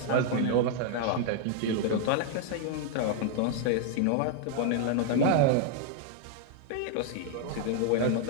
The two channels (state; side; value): different; both; correlation 0.00